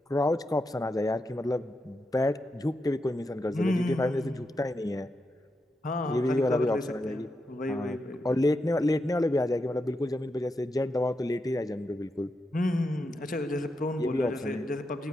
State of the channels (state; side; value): normal; both; correlation 0.86